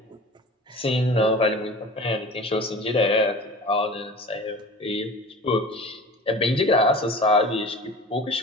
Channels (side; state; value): both; normal; correlation 0.39